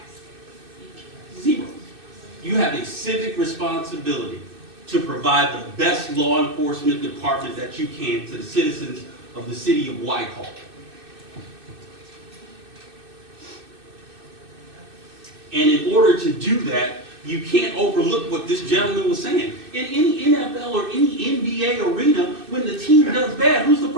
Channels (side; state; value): left; late; 2.6 ms